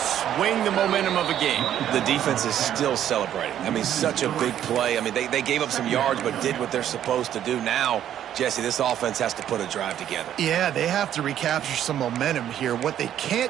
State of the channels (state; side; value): quieter; left; 10.8 dB